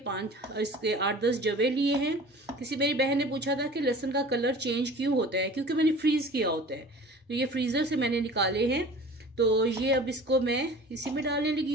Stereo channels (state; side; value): normal; both; correlation 0.42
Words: जवे लिए हैं। किसी मेरी बहन ने पूछा था कि लहसुन का कलर चेंज क्यों होता है, क्योंकि मैंने फ्रीज किया होता है, तो ये फ्रीजर से मैंने निकाले हैं। तो ये अब इसको मैं इसी में डालने लगी